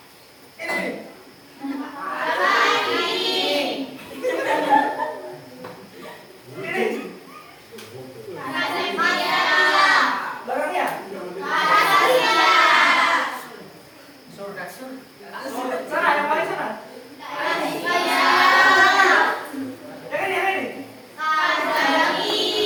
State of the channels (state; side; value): identical; both; correlation 1.00